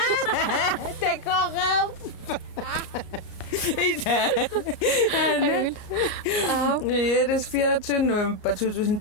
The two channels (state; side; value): late; right; 32 ms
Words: такорав det er 24. november